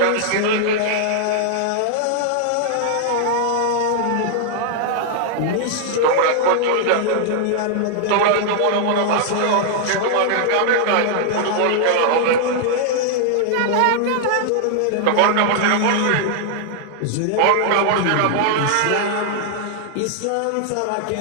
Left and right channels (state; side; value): different; both; correlation -0.01